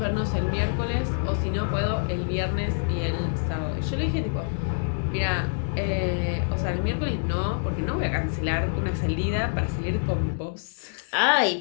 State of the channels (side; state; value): right; silent; digital silence